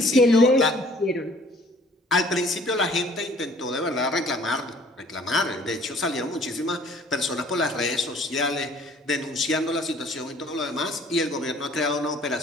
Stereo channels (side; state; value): both; normal; correlation 0.55